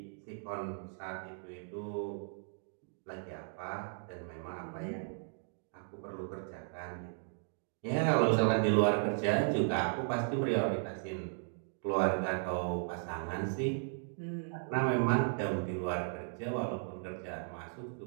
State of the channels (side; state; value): left; silent; 54 dB below the other